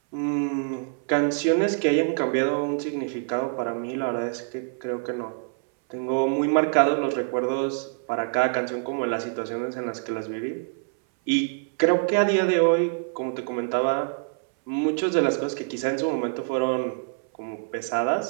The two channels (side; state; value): left; silent; 59 dB below the other